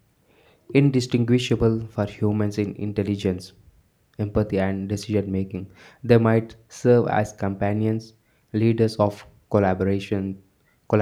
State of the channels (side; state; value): both; identical; correlation 1.00